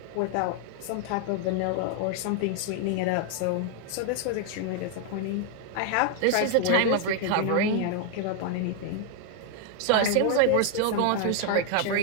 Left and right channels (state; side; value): different; both; correlation 0.00